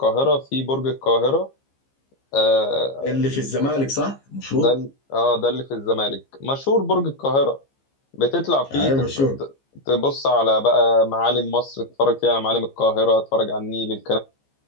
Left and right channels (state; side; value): late; right; 15 ms